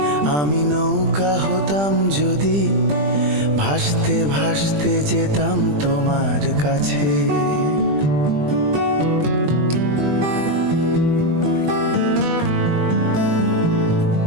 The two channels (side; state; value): left; late; 20 ms